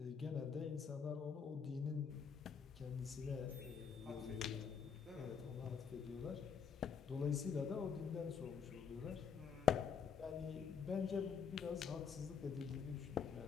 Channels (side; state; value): right; quieter; 6.7 dB